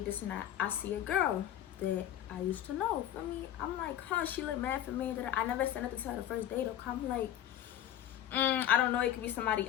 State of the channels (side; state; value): right; quieter; 11.3 dB